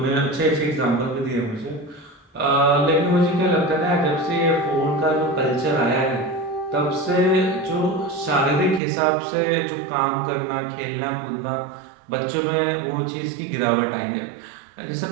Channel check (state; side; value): drops out; left; at 8.8 s